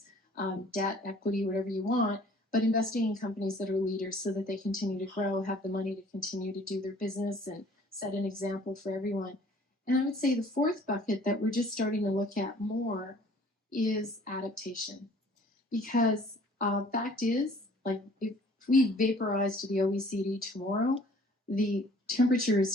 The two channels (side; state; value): both; normal; correlation 0.54